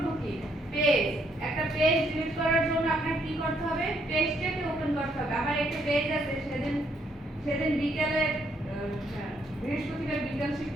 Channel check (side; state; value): both; normal; correlation 0.71